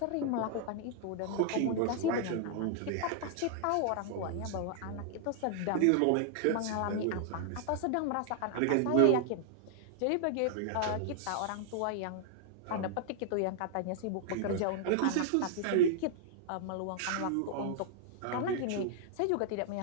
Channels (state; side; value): different; both; correlation 0.00